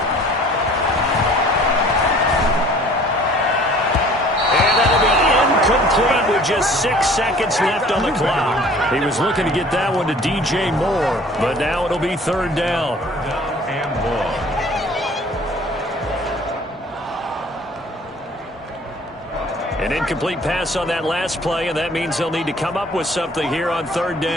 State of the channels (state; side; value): normal; both; correlation 0.51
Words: Just 6 seconds left on the clock. He was looking to get that one to DJ Moore, but now it'll be third down. An incomplete pass on that last play, and that means they'll need to come up with something here on third